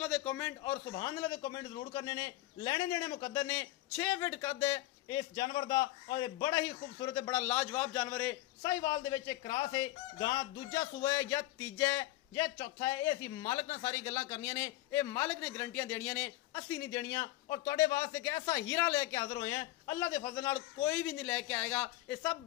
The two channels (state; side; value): quieter; right; 16.6 dB